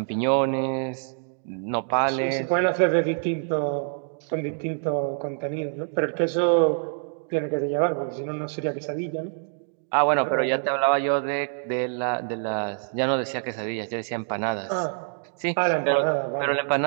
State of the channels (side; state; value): left; silent; digital silence